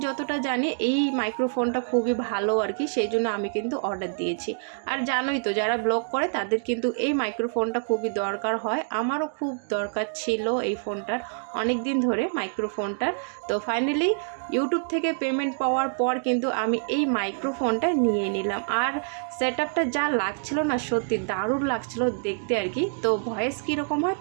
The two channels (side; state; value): left; silent; digital silence